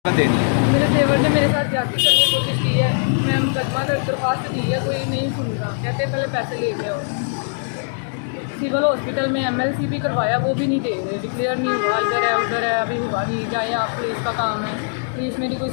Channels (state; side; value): silent; right; digital silence